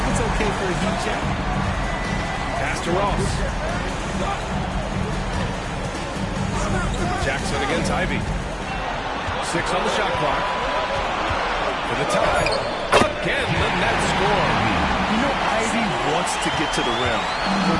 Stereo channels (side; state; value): both; identical; correlation 1.00